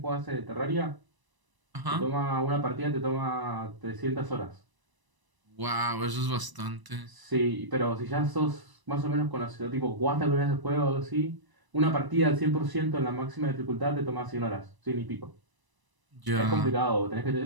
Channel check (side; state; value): left; late; 1.0 ms